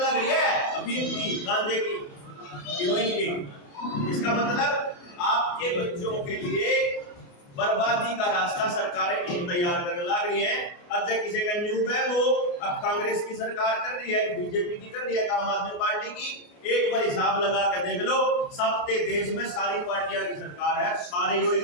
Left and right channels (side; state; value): right; late; 28 ms